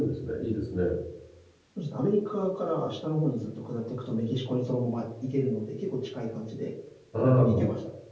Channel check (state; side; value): identical; both; correlation 1.00